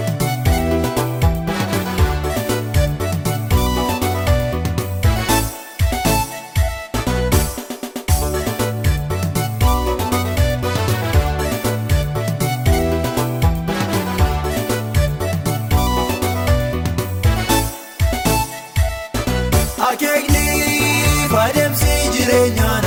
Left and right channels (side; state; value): both; identical; correlation 1.00